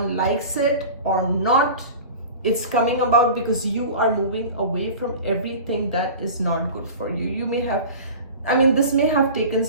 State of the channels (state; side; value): inverted; both; correlation -0.36